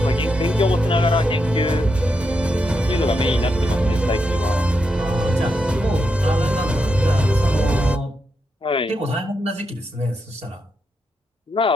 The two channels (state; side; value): normal; both; correlation 0.84